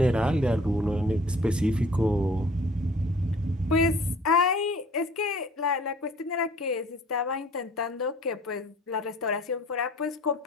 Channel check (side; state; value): both; normal; correlation 0.52